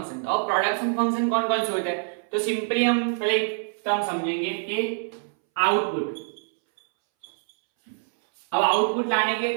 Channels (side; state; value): left; silent; 62 dB below the other